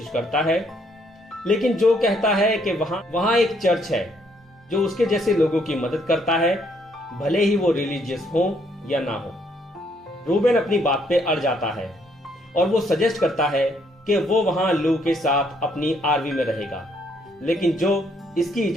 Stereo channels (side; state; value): both; normal; correlation 0.69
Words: करता है, लेकिन जो कहता है कि वहां एक चर्च है जो उसके जैसे लोगों की मदद करता है, भले ही वो रिलीजियस हो या ना हो। रूबेन अपनी बात पे अड़ जाता है और वो सजेस्ट करता है कि वो वहां लू के साथ अपनी आरवी में रहेगा, लेकिन जो इसकी